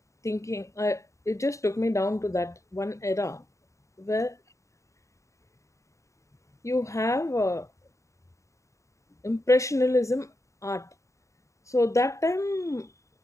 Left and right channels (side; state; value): right; late; 0.15 ms